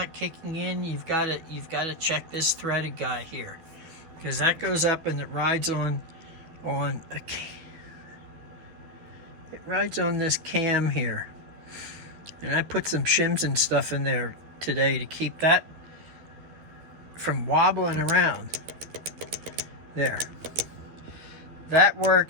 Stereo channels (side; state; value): left; late; 13 ms